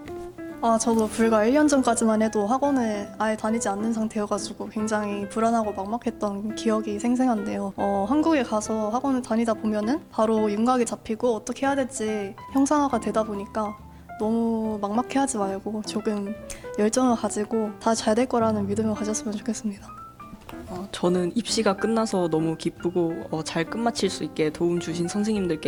저도 불과 1년 전까지만 해도 학원을 아예 다니지 않는 상태여가지고 굉장히 불안하고 막막했던 기억이 생생한데요. 한국에 가서 학원을 다니다 보면은 바로 윤곽이 잡히고 어떻게 해야 될지 형상화가 되다 보니까 너무 막막해하지 말고 조금 열정을 가지고 다 잘 될 거라는 믿음을 가졌으면 좋겠습니다. 저는 입시가 끝나서 너무 기쁘고 잘 끝마칠 수 있게 도움 주신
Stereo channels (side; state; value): both; identical; correlation 1.00